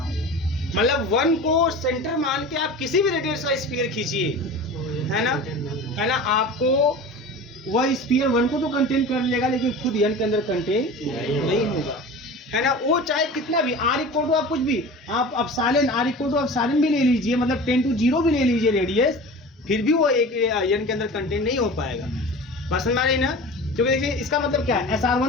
मतलब 1 को सेंटर मान के आप किसी भी रेडियस का स्फीयर खींचिए, है ना, आपको वह स्फीयर 1 को तो कंटेन कर लेगा, लेकिन खुद एन के अंदर कंटेन नहीं होगा, है ना। वो चाहे कितना भी आर इक्वल टू आप कुछ भी आप epsilon r equal to epsilon भी ले लीजिए, मतलब 10 to 0 भी ले लीजिए रेडियस, फिर भी वो एक एन के अंदर कंटेन नहीं हो पाएगा। बस समझ रही ना। क्योंकि देखिए इसका मतलब क्या है,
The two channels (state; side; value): normal; both; correlation 0.35